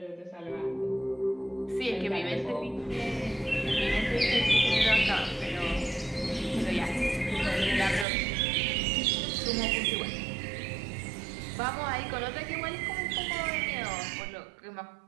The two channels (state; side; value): drops out; left; at 8.1 s